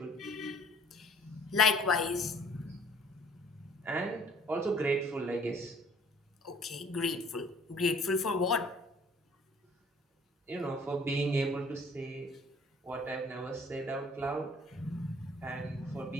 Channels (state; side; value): normal; both; correlation 0.54